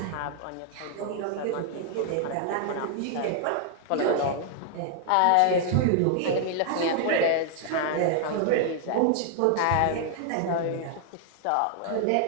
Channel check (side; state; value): both; different; correlation 0.00